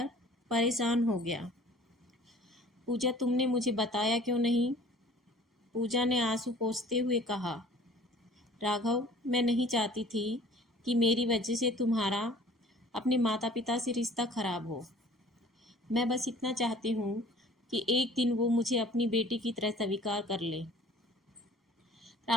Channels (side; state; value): both; normal; correlation 0.50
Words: परेशान हो गया। पूजा, तुमने मुझे बताया क्यों नहीं? पूजा ने आंसू पोंछते हुए कहा, राघव, मैं नहीं चाहती थी कि मेरी वजह से तुम्हारा अपने माता पिता से रिश्ता खराब हो। मैं बस इतना चाहती हूँ कि एक दिन वो मुझे अपनी बेटी की तरह स्वीकार कर ले।